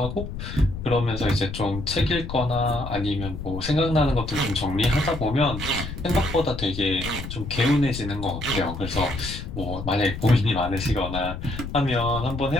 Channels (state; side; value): noise; left; rumble, 8 dB below the sound